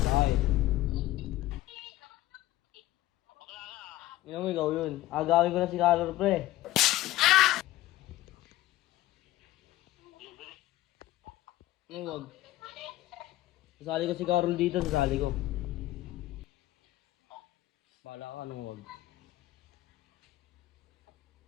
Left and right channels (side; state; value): right; quieter; 16.1 dB